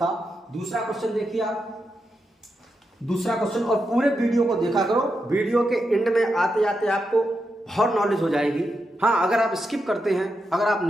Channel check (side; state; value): both; normal; correlation 0.86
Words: दूसरा क्वेश्चन देखिए आप, दूसरा क्वेश्चन, और पूरे वीडियो को देखा करो, वीडियो के एंड में आते आते आपको बहुत नॉलेज हो जाएगी। हाँ, अगर आप स्किप करते हैं, अगर आप